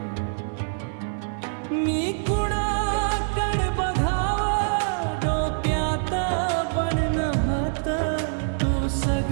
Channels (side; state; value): left; silent; 56 dB below the other